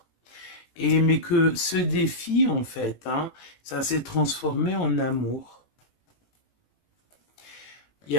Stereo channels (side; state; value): right; late; 18 ms